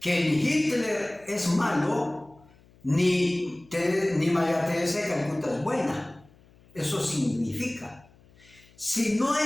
Que ni Hitler es malo, ni María Teresa de Calcuta es buena. Eso significa, si no hay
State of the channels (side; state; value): left; noise; hum, 28 dB below the sound